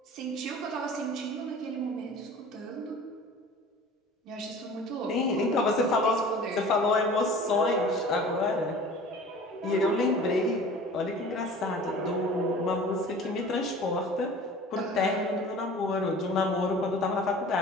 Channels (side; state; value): both; normal; correlation 0.43